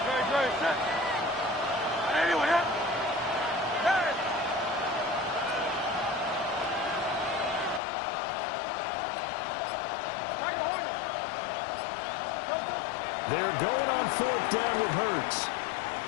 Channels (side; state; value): right; drops out; at 7.8 s